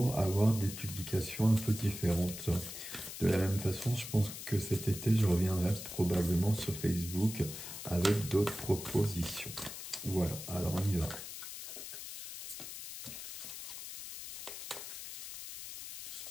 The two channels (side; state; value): left; noise; hiss, 9 dB below the sound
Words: avoir des publications un peu différentes. De la même façon, je pense que cet été, je reviendrai probablement sur Facebook avec d'autres propositions. Voilà, alors on y va.